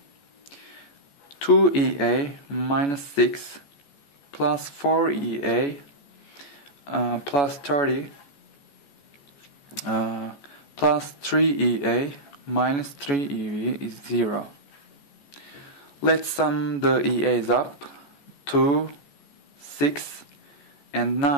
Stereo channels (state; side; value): late; right; 14 ms